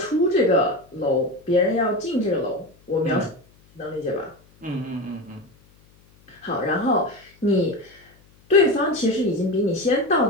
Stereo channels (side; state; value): left; noise; hum, 30 dB below the sound